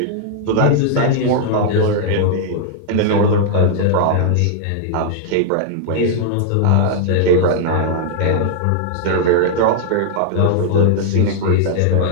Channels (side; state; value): both; different; correlation -0.01